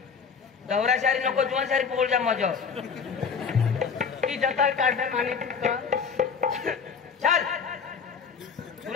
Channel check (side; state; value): right; quieter; 6.1 dB